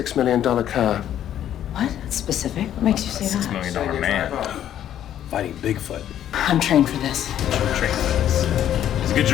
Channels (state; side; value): quieter; right; 10.9 dB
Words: million car? What? That's specific. What makes you say $6 that? million man. Fighting Bigfoot. I'm trained for this. Train for this. He's a good